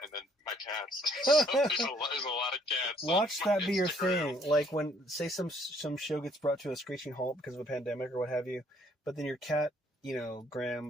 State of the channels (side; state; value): both; normal; correlation 0.64